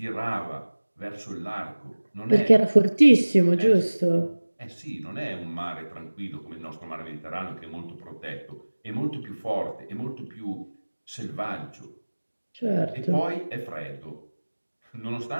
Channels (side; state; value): both; inverted; correlation -1.00